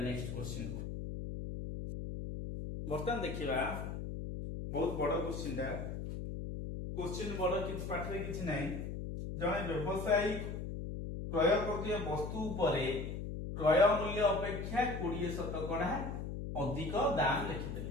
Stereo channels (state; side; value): noise; left; hum, 5 dB below the sound